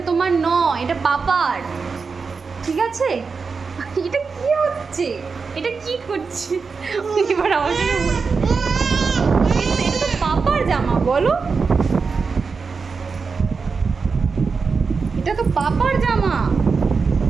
তোমার নয়, এটা পাপার। ঠিক আছে? এটা কি হচ্ছে? এটা কি করছে? এবার আমাকে এটা তো পাপার জামা, বলো। এটা তো পাপার জামা।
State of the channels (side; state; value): left; quieter; 4.9 dB